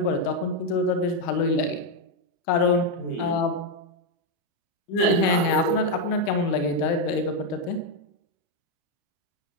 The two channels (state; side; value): late; right; 30 ms